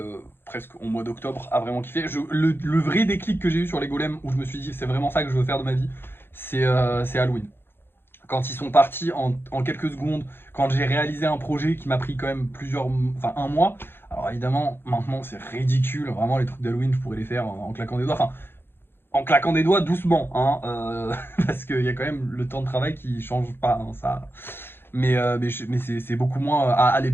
presque au mois d'octobre à vraiment kiffer. Le vrai déclic que j'ai eu sur les golems où je me suis dit c'est vraiment ça que je veux faire de ma vie, c'est Halloween. Quand ils sont partis en quelques secondes, quand j'ai réalisé un projet qui m'a pris quand même enfin 1 mois. Alors évidemment maintenant c'est ridicule, vraiment les trucs d'Halloween je pourrais les faire en claquant des doigts. Enfin, en claquant des doigts doucement, hein, parce qu'il y a quand même le temps de travail qui change pas, hein, ça. Mais c'est beaucoup moins. À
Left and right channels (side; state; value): right; late; 0.10 ms